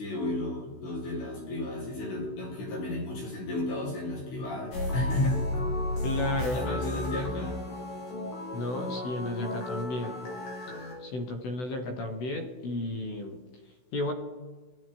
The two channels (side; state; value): right; late; 16 ms